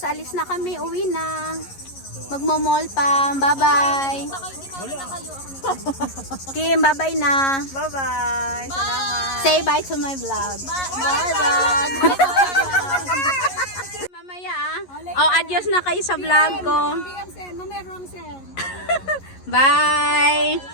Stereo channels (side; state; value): right; late; 11 ms